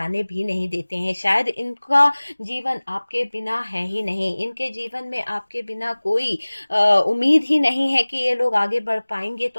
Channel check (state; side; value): inverted; both; correlation -1.00